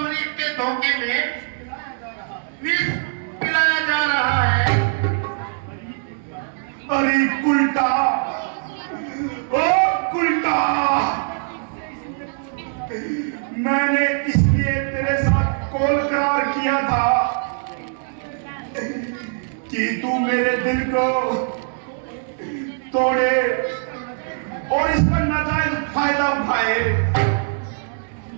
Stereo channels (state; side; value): silent; left; 64 dB below the other